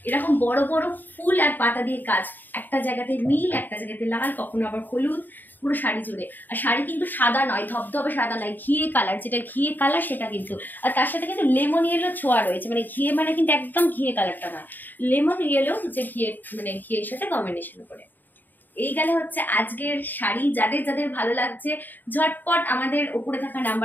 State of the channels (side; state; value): right; late; 0.089 ms